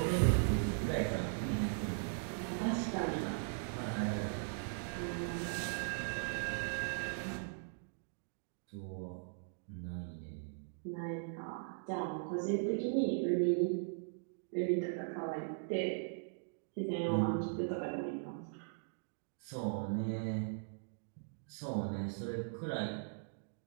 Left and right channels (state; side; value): silent; left; digital silence